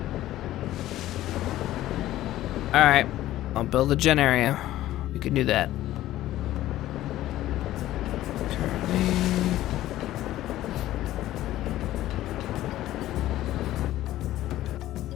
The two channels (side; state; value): right; quieter; 14.5 dB